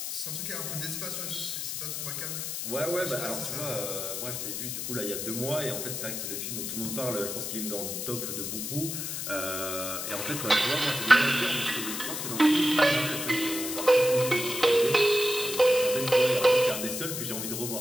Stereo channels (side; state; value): left; noise; hiss, 4 dB below the sound